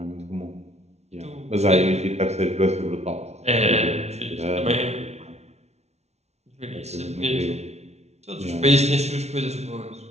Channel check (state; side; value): late; left; 0.31 ms